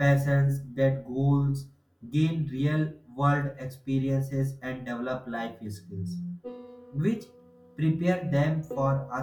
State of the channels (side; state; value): both; identical; correlation 1.00